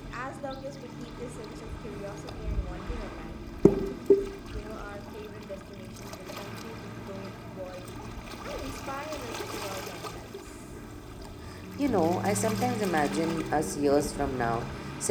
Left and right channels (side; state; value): both; identical; correlation 1.00